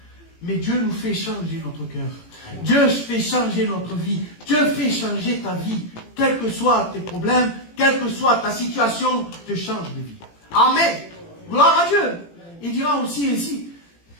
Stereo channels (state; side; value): late; right; 18 ms